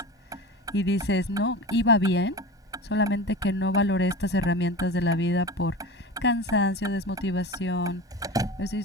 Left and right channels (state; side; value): normal; both; correlation 0.30